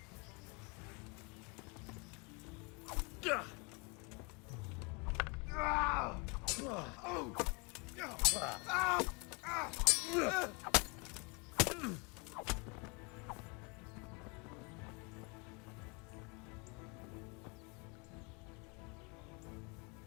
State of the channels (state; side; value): quieter; right; 31.1 dB